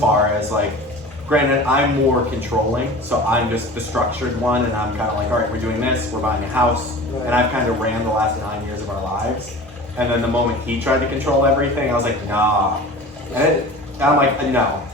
as like, granted, I'm more controlling, so I'm just the structured one, and I'm kind of like, all right, we're doing this, we're buying a house, and I've kind of ran the last 9 years of our lives. And then the moment he tried to control everything, I was like, nah. And I'm like, no.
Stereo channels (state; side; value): normal; both; correlation 0.38